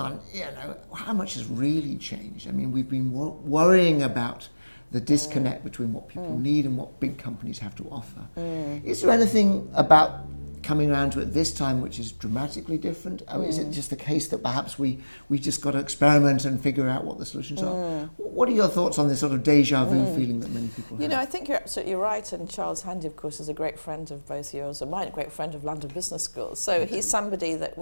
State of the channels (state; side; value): inverted; both; correlation -1.00